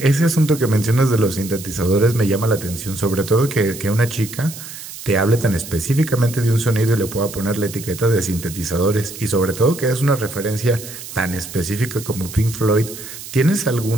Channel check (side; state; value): right; noise; hiss, 12 dB below the sound